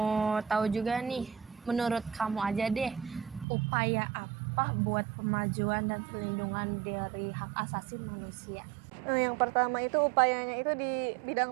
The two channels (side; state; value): left; drops out; at 3.5 s